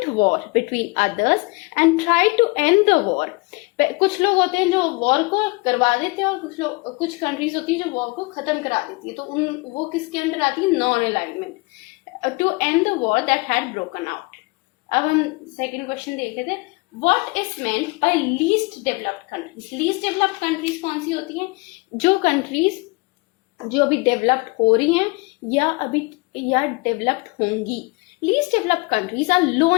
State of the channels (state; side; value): quieter; right; 26.0 dB